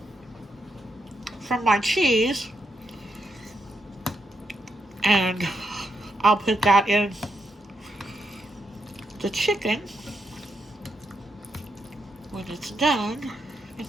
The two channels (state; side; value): normal; both; correlation 0.82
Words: from my cheese, and I'll put that in the chicken when it's done at